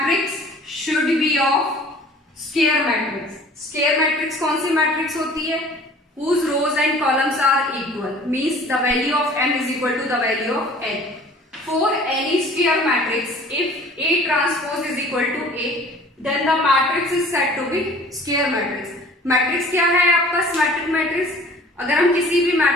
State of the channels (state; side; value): normal; both; correlation 0.48